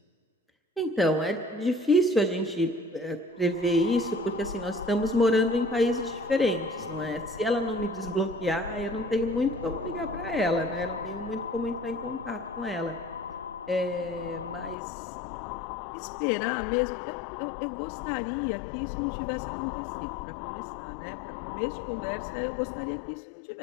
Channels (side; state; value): right; drops out; at 14.8 s